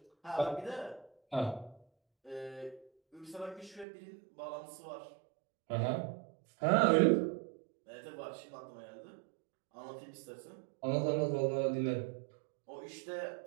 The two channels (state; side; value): drops out; left; at 3.9 s